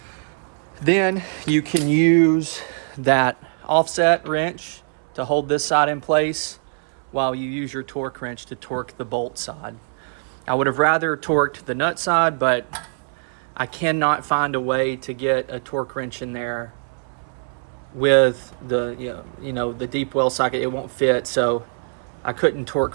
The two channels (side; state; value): left; silent; 64 dB below the other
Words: Then you can use that offset wrench to hold this side in place while you use your torque wrench to torque the bolt side. I would have rather torqued the nut side, but I cannot find a way to get a torque wrench in there with the the deep well socket. It won't fit, so I couldn't